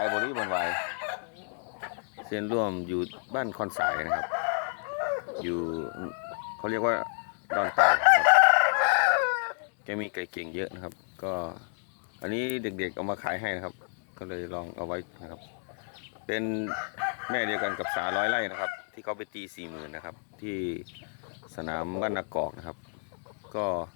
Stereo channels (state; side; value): silent; right; 58 dB below the other